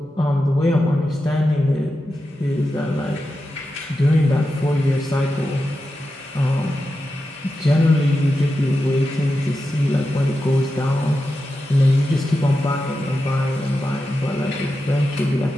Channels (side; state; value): both; normal; correlation 0.90